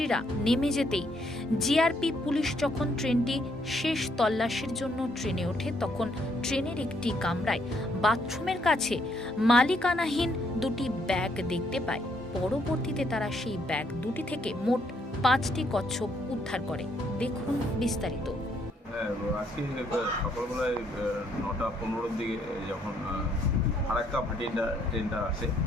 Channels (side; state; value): both; normal; correlation 0.70